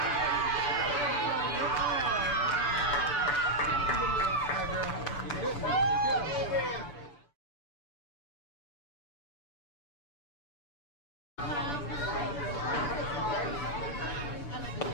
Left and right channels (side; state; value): right; late; 6.8 ms